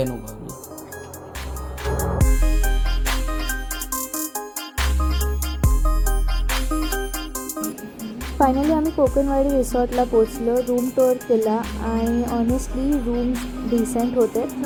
फायनली आम्ही कोकणवाडी रिसॉर्टला पोचलो. रूम टूर केला आणि ऑनेस्टली रूम्स डिसेंट होते,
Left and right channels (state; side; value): identical; both; correlation 1.00